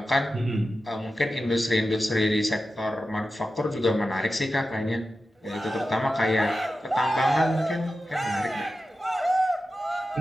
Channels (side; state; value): both; normal; correlation 0.92